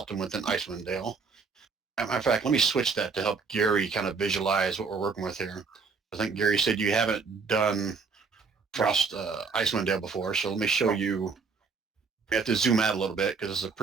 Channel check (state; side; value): quieter; left; 4.9 dB